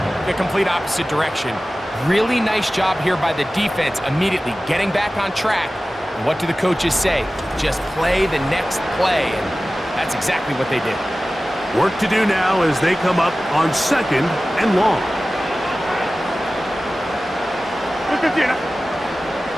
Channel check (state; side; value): normal; both; correlation 0.96